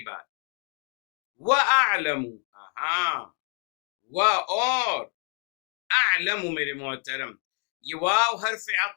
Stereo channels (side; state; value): right; quieter; 38.1 dB